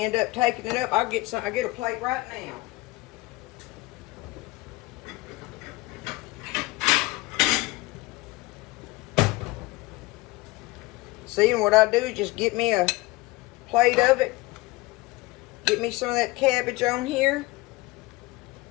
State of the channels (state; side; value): quieter; right; 21.7 dB